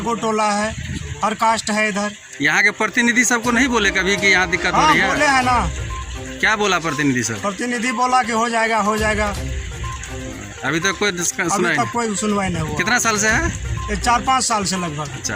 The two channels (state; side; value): identical; both; correlation 1.00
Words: टोला है, हर कास्ट है इधर। यहाँ के प्रतिनिधि सबको नहीं बोले कभी कि यहाँ दिक्कत हो हाँ, रही बोले है? है ना। क्या बोला प्रतिनिधि सब? प्रतिनिधि बोला कि हो जाएगा, हो जाएगा। अभी तक कोई सुनाई अभी नहीं। तक कोई सुनवाई नहीं हुआ। कितना साल से है? ये 4-5 साल से लगभग।